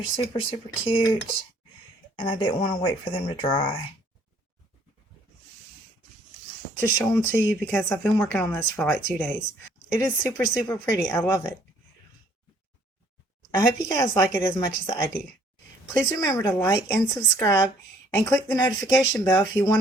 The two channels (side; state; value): both; normal; correlation 0.61